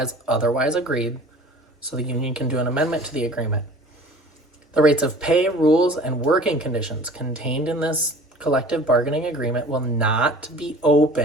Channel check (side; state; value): both; normal; correlation 0.45